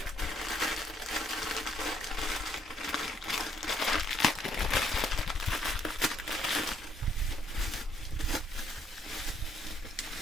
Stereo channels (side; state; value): both; normal; correlation 0.69